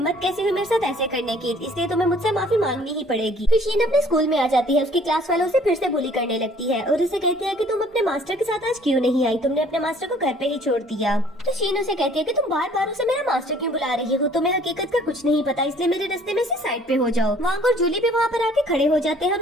कैसे हुई मेरे साथ ऐसे करने की, इसलिए तुम्हें मुझसे माफी मांगनी ही पड़ेगी। फिर शीन अपने स्कूल में आ जाती है, उसकी क्लास वालों से फिर से बुली करने लगती है और उसे कहती है कि तुम अपने मास्टर के साथ आज क्यों नहीं आई, तुमने अपने मास्टर को घर पे ही छोड़ दिया। तो शीन उसे कहती है कि तुम बार बार उसे मेरा मास्टर क्यों बुला रही हो, तुम्हें हकीकत का कुछ नहीं पता, इसलिए मेरे रास्ते में से साइड पे हो जाओ। वांग और जूली भी वहाँ पर आके खड़े हो जाते हैं और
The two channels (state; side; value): normal; both; correlation 0.56